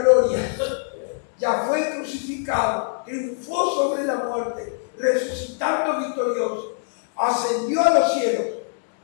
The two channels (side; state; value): right; silent; digital silence